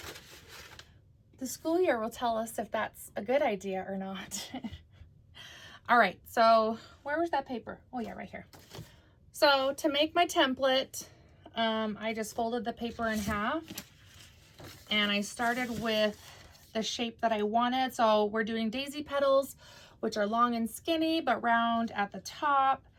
The school year will tell us if that's a good idea or not. All right, so where was that paper? Oh yeah, right here. So to make my template, I just folded the paper in half and I started with the shape that I wanted. So we're doing daisy petals, which are long and skinny, but round at the top.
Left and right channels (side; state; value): both; identical; correlation 1.00